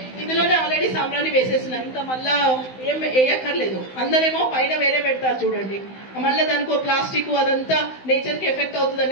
ఇందులోనే ఆల్రెడీ సాంబ్రాణి వేసేసిన, ఇంకా మళ్ళా ఏం వేయక్కర్లేదు. అందరేమో పైన వేరే పెడతారు చూడండి, మళ్ళీ దానికి ప్లాస్టిక్ అదంతా నేచర్ కి ఎఫెక్ట్ అవుతుంది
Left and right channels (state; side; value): late; right; 16 ms